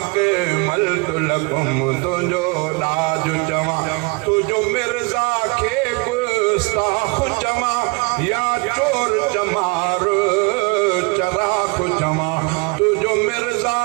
के मल तो लकुम तुंहिंजो ताज चवां तुझो मिर्ज़ा खे गुस्ताख़ चवां या चोर चमार चराख चवां तुझो मिर्ज़ा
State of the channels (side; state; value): left; quieter; 29.4 dB